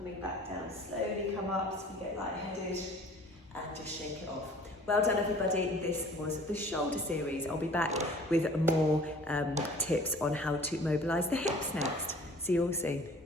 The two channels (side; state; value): both; normal; correlation 0.49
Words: back down, slowly come up so we get lightheaded, and just shake it off. Well done everybody, this was the shoulder series. I'll be back with more tips on how to mobilise the hips next. See you all soon.